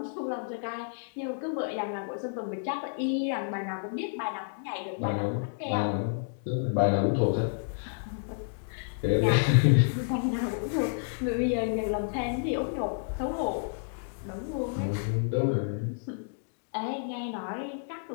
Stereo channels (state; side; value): silent; right; digital silence